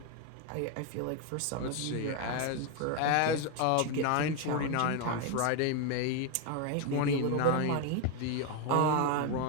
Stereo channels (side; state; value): both; different; correlation 0.01